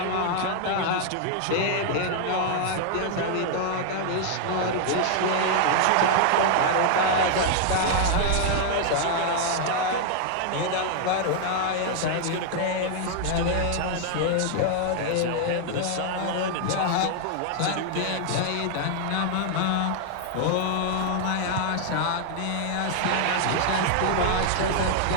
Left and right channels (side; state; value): both; different; correlation 0.00